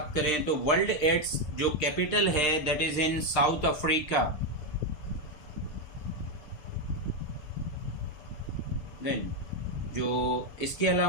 करें तो वर्ल्ड एड्स जो कैपिटल है that is in South Africa. Then जो इसके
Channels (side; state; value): right; late; 6.6 ms